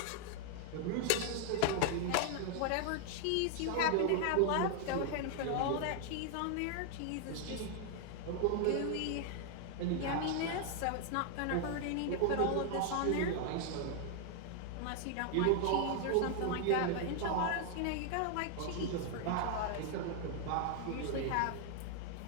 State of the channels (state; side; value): different; both; correlation 0.00